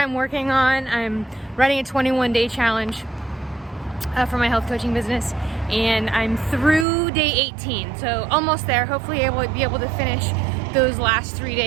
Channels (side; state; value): left; drops out; at 6.9 s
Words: working on. I'm running a 21-day challenge for my health coaching business, and I'm through day 18, so almost there. Hopefully be able to finish those last 3